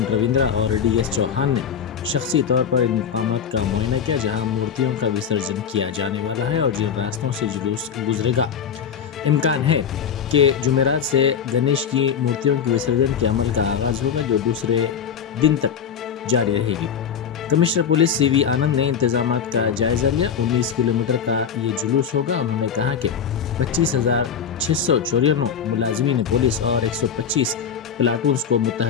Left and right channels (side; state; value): right; quieter; 7.4 dB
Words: رویندرا اور ڈی ایس چوہان نے شخصی طور پر ان مقامات کا معائنہ کیا جہاں مورتیوں کا وسرجن کیا جانے والا ہے اور جن راستوں سے جلوس گزرے گا۔ امکان ہے کہ جمعرات سے گنیش کی مورتیوں کے وسرجن کے عمل کا آغاز ہوگا جو دوسرے دن تک جاری رہے گی۔ کمشنر پولیس سی وی آنند نے انتظامات کا جائزہ لیا۔ 19 کلومیٹر کا یہ جلوس ہوگا۔ انہوں نے کہا کہ 25,694 ملازمین پولیس اور 125 پلاٹونز کو